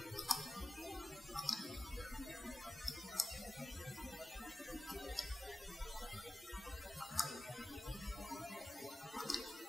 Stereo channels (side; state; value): both; normal; correlation 0.96